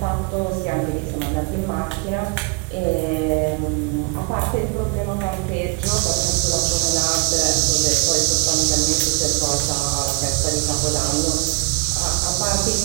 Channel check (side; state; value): left; quieter; 33.1 dB